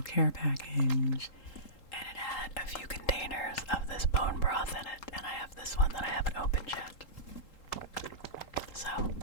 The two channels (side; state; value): right; late; 3.8 ms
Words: care package, and it had a few containers of this bone broth in it, and I have this one that I haven't opened yet. So,